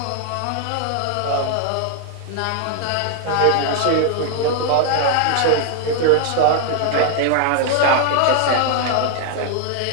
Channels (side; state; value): both; different; correlation 0.00